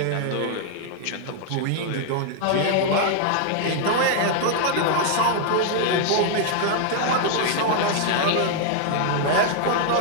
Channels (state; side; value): different; both; correlation 0.00